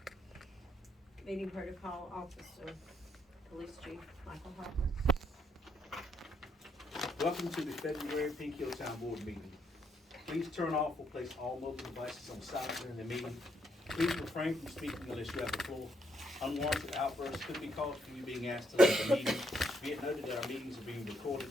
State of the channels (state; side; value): normal; both; correlation 0.74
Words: Meeting Protocol Officer, Police Chief Michael Harper. Welcome to the February Pink Hill Town Board meeting. Please turn off or place all mobile devices on silent during the meeting. Please refrain from speaking unless you have the floor. Unwarranted outbursts could be caused from you being asked to leave the meeting. Be it noted that our meetings are being recorded.